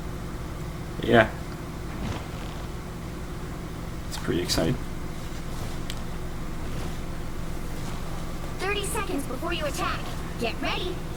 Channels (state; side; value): identical; both; correlation 1.00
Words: Yeah. It's pretty exciting. 30 seconds before you attack. Get ready.